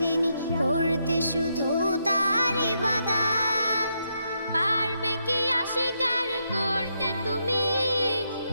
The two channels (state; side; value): inverted; both; correlation -0.80